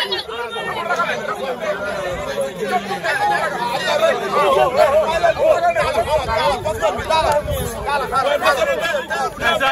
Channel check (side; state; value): both; identical; correlation 1.00